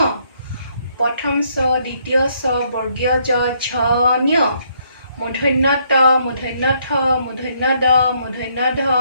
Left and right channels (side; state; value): both; inverted; correlation -0.70